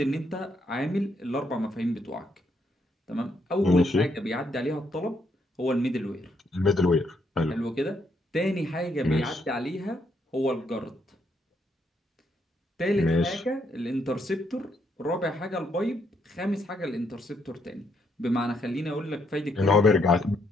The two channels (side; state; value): both; normal; correlation 0.75